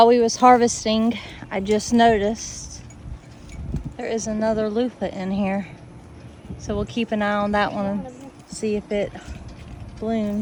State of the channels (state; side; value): identical; both; correlation 1.00